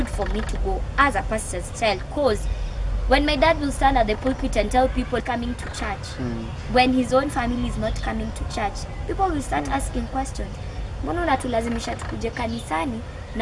for me to go as a pastor's child, because when my dad will stand at the pulpit and tell people coming to church, when his own family is not coming to church, people will start asking questions. Mbona unatulazimisha tukuje kanisani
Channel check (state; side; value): identical; both; correlation 1.00